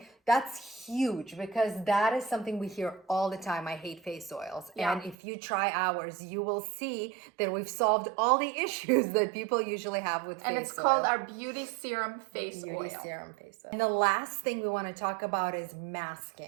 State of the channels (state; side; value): drops out; left; at 5.2 s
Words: huge because that is something we hear all the time. I hate face oils. Yeah. And if you try ours, you will see that we've solved all the issues that people usually have with face oil. And it's called our Beauty Serum Face Beauty Oil. Serum Face Oil. And the last thing we want to talk about is